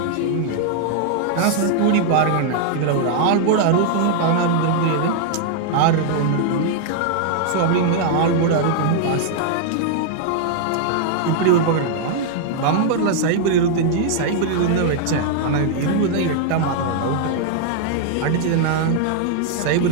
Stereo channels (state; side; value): different; both; correlation -0.01